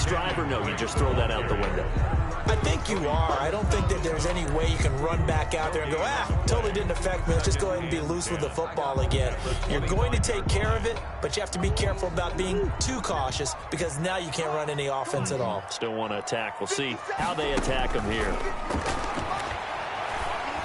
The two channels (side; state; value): both; identical; correlation 1.00